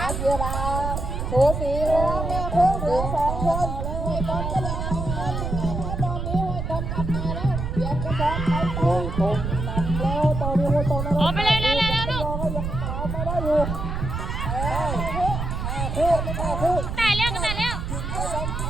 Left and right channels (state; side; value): noise; right; rumble, 3 dB below the sound